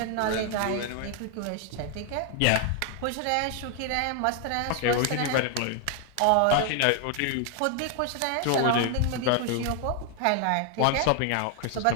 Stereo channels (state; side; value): different; both; correlation 0.00